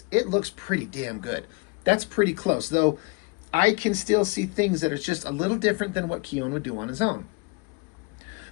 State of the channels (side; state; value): right; quieter; 28.6 dB